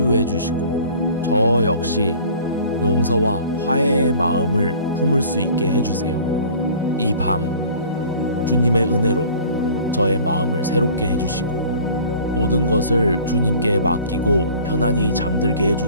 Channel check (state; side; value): inverted; both; correlation -0.48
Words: 주시고 저 역시 용서와 화해의 마음을 품을 수 있게 해주세요. 이 밤 주님의 은혜로 저의 마음을 새롭게 해주시고 모든 것을 주님께 맡기고 편안히 잠들게